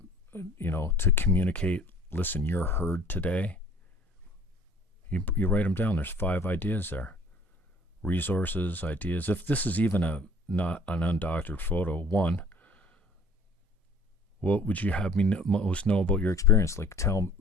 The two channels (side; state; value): both; normal; correlation 0.53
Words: to communicate, listen, you're heard today. You write them down. There's 5 ideas there. Resources, ideas. If this is even not an undoctored photo, 1, what would you have me most know about your experience? Like, tell,